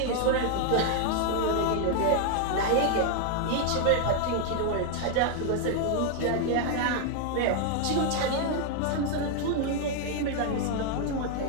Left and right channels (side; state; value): both; different; correlation 0.00